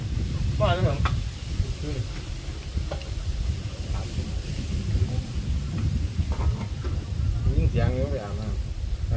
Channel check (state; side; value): identical; both; correlation 1.00